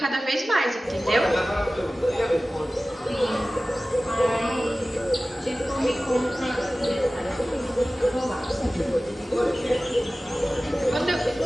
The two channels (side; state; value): both; normal; correlation 0.97